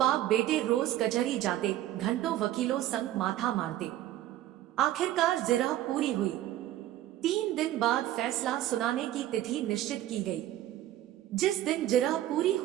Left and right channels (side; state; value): left; quieter; 13.6 dB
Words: बेटे रोज कचहरी जाते, घंटों वकीलों संग माथा मारते। आखिरकार जिरह पूरी हुई। 3 दिन बाद फैसला सुनाने की तिथि निश्चित की गई। जिस दिन जिरह पूरी